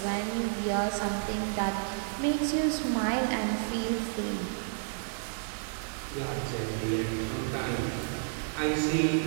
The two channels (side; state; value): left; silent; digital silence